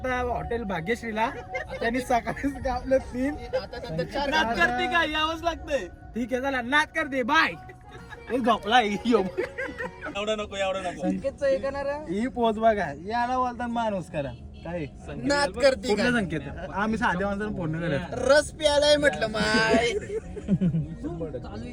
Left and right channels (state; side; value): identical; both; correlation 1.00